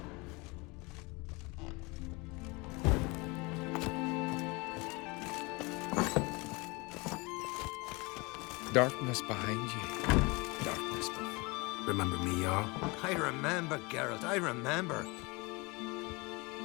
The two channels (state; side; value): quieter; right; 26.3 dB